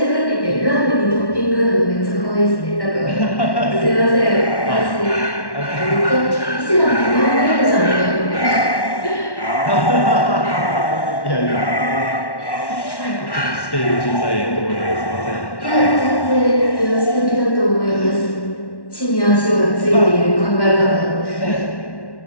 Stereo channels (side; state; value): right; late; 1.1 ms